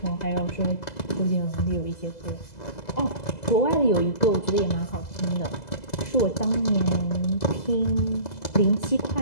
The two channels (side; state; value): right; late; 2.0 ms